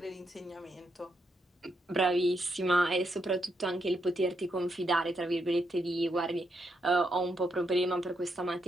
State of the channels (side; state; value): both; normal; correlation 0.80